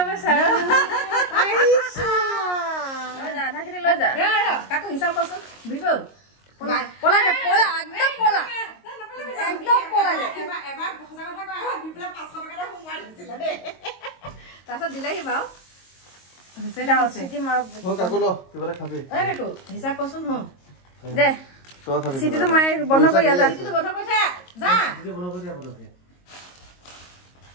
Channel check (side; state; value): right; late; 22 ms